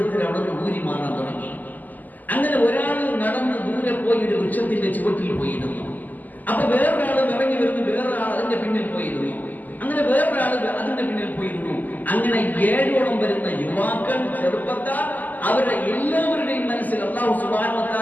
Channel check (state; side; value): late; right; 0.083 ms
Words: അവിടെ നിന്ന് ഊരി മാറാൻ തുടങ്ങി. അങ്ങനെ ഒരാൾ നടന്ന് ദൂരെ പോയി ഒരു വൃക്ഷത്തിന്റെ ചുവട്ടിൽ പോയിരുന്നു. അപ്പൊ വേറൊരാൾ ഇറങ്ങി വരുന്നു, വേറൊരാൾ അതിന്റെ പിന്നിൽ പോയിരുന്നു. അങ്ങനെ വേറൊരാൾ അതിന്റെ പിന്നിൽ പോയിരുന്നു. അങ്ങനെ 7ഓളം വരുന്ന യുവാക്കൾ, ചെറുപ്പക്കാർ, അവരുടെ എല്ലാവരുടെയും മനസ്സിൽ അല്ലാഹു സുബ്ഹാനഹു വ